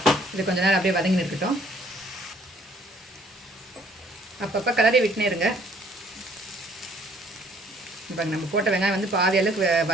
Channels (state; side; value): normal; both; correlation 0.60